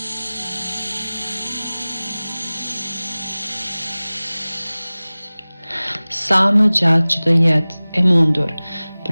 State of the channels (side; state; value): both; inverted; correlation -0.99